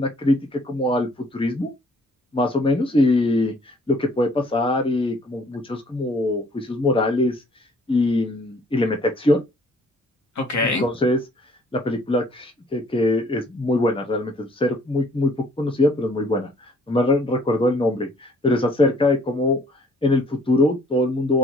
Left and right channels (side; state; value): both; normal; correlation 0.59